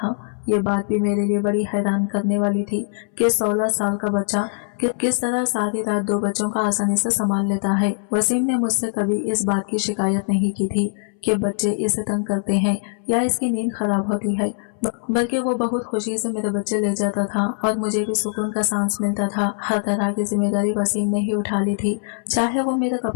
ये बात भी मेरे लिए बड़ी हैरान करने वाली थी कि 16 साल का बच्चा किस तरह सारी रात 2 बच्चों का आसानी से संभाल लेता है। वसीम ने मुझसे कभी इस बात की शिकायत नहीं की थी कि बच्चे इसे तंग करते हैं या इसकी नींद खराब होती है, बल्कि वो बहुत खुशी से मेरे बच्चे ले जाता था और मुझे भी सुकून का सांस मिलता था। हर तरह की जिम्मेदारी वसीम ने ही उठा ली थी, चाहे वो मेरे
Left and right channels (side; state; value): right; silent; 62 dB below the other